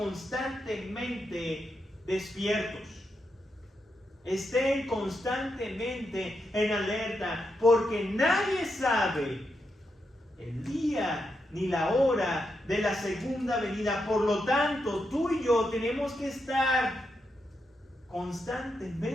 despiertos. Estén constantemente en alerta, porque nadie sabe el día ni la hora de la segunda venida. Por lo tanto, tú y yo tenemos que estar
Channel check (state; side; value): normal; both; correlation 0.84